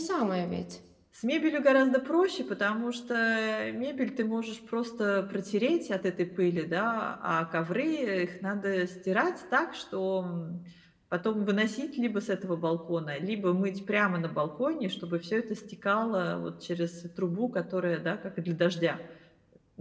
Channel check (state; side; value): identical; both; correlation 1.00